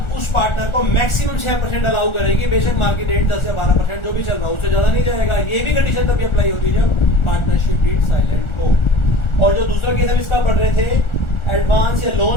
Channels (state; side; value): late; right; 1.4 ms